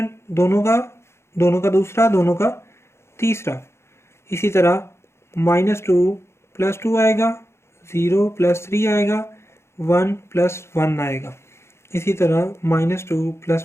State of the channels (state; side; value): late; right; 0.13 ms